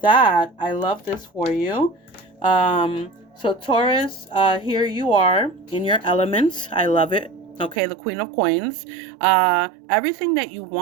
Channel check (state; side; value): drops out; left; at 7.8 s